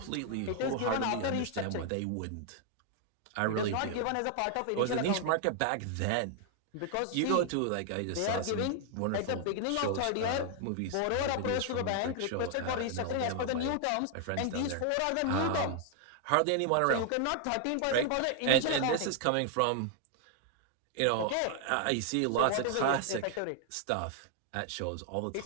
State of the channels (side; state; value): both; different; correlation 0.00